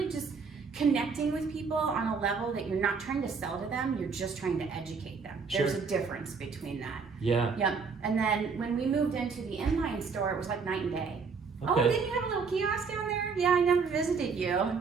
just connecting with people on a level that you're not trying to sell to them, you're just trying to educate them. Sure. There's a difference between that. Yeah. Yep. And then when we moved into the inline store, it was like night and day. Okay. Oh, didn't you have a little kiosk down there? Yeah, I never visited you.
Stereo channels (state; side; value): quieter; left; 5.2 dB